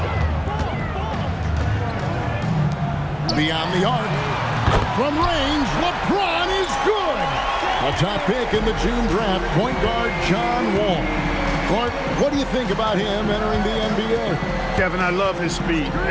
Beyond the arc. From range, LeBron is good. A top pick in the June draft, point guard John Wall. Clark, what do you think about him entering the NBA? Kevin, I love his speed,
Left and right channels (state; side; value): identical; both; correlation 1.00